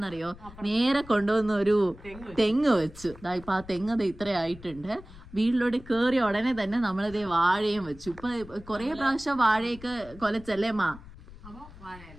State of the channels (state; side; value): noise; left; rumble, 18 dB below the sound